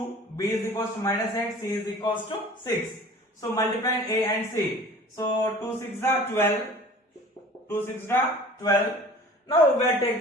b is equals to minus 8, c is equals to 6. So multiply a and c. So 2 6 are 12. 2 6 are 12. Now we will take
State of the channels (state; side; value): normal; both; correlation 0.45